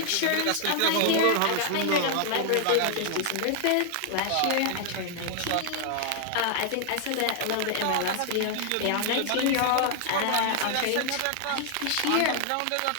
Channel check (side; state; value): both; different; correlation 0.00